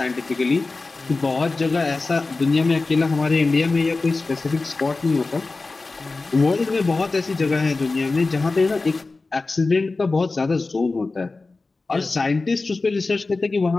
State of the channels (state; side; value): quieter; right; 3.6 dB